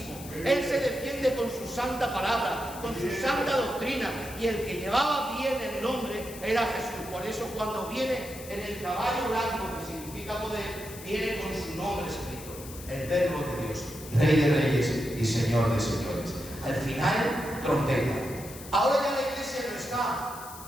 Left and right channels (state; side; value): noise; left; hiss, 15 dB below the sound